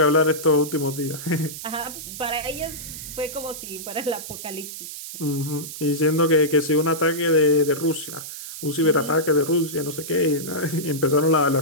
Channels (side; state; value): right; noise; hiss, 10 dB below the sound